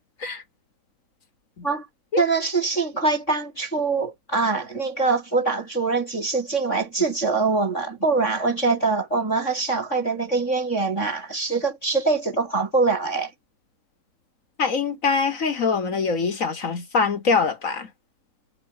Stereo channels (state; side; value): late; right; 3.6 ms